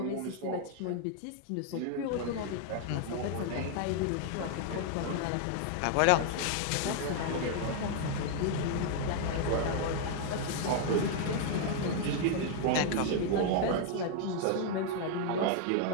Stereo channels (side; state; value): both; different; correlation 0.00